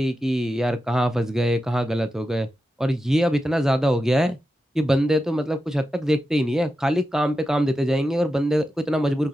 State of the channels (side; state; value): both; normal; correlation 0.90